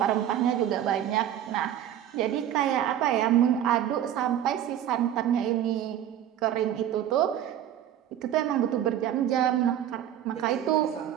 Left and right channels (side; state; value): left; quieter; 10.9 dB